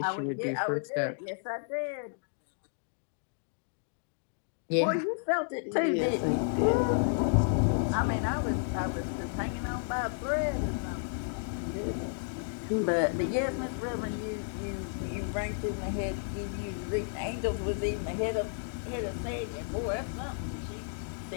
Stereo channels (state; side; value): silent; right; digital silence